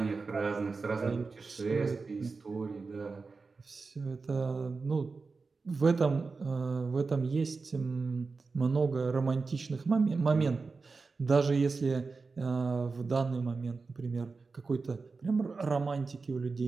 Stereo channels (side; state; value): left; quieter; 4.3 dB